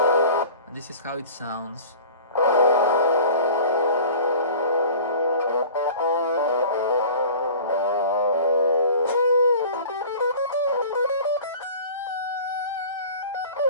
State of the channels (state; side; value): inverted; both; correlation -0.42